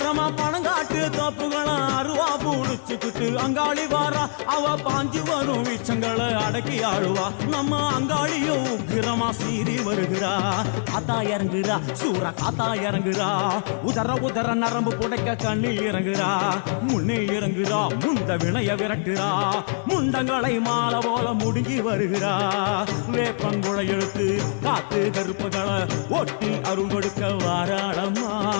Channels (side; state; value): right; silent; 63 dB below the other